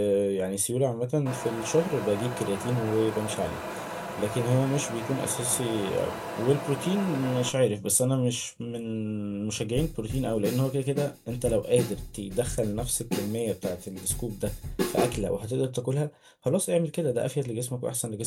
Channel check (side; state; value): both; identical; correlation 1.00